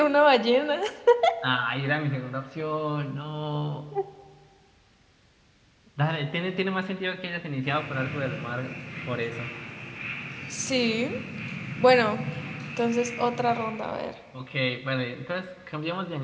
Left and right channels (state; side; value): identical; both; correlation 1.00